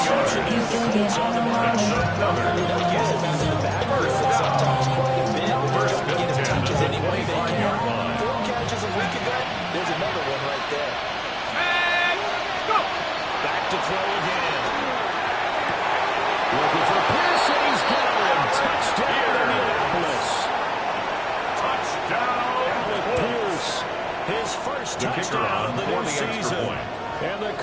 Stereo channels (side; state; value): both; identical; correlation 1.00